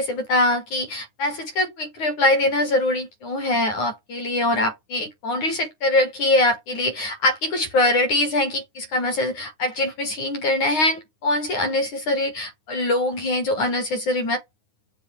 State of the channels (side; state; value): right; late; 9.7 ms